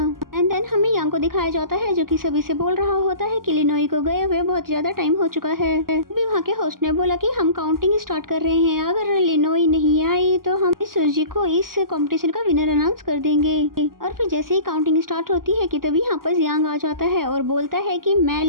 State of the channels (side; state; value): left; late; 0.91 ms